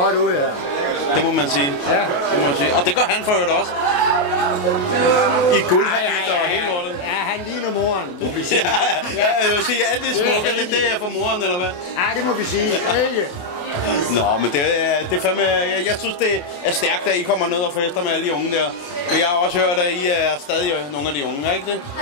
ud her. Det må man sige. Ja. Det må man sige. Og det gør han for øvrigt også. I guldhabit og hele lortet. Ja, han ligner moren, må vi sige. Ja, jeg vil sige, alt det smukke, det er for moren, eller hvad? Ja, det må vi sige. Ikke? Nå, men det er fandme... Jeg synes, det er stærkt, at I kommer ned og fester med alle de unge der. Men jeg har også hørt, at I er stadig nogle af de unge, er ikke det?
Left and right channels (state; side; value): late; right; 28 ms